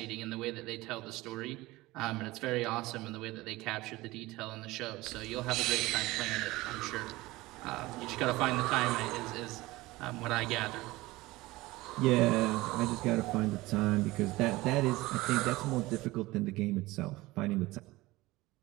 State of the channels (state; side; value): quieter; left; 19.8 dB